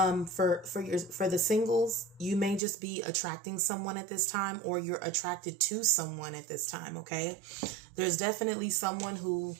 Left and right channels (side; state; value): left; drops out; at 2.6 s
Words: the singles, you may just be attracting someone at this time, or you're attracted to someone at this time, okay. There's definitely someone who